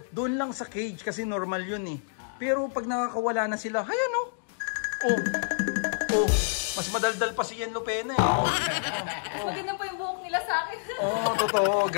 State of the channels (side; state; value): right; silent; digital silence